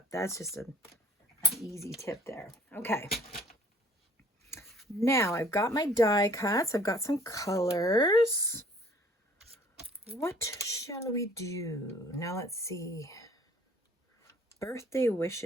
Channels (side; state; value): both; normal; correlation 0.54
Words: That's just an easy tip there. Okay. Now I've got my die cuts. I've got some colors. What shall we do? Now let's see. Birthday